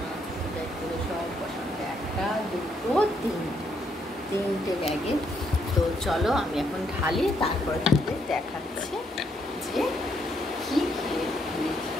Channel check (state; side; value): normal; both; correlation 0.74